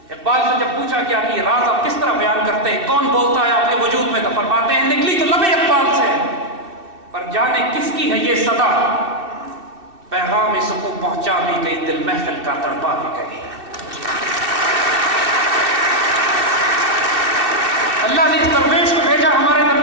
اقبال سے جب پوچھا گیا کہ یہ راز آپ کس طرح بیان کرتے ہیں، کون بولتا ہے آپ کے وجود میں، تو فرماتے ہیں نکلی تو لب اقبال سے، پر جانے کس کی ہے یہ صدا، پیغام سکوں پہنچا بھی گئی، دل محفل کا تڑپا بھی گئی. اللہ نے اس درویش کو بھیجا ہمارے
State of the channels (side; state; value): left; late; 2.6 ms